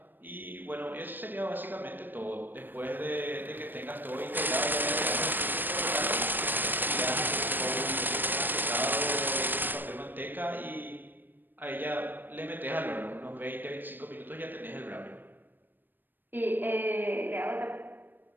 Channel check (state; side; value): late; left; 0.092 ms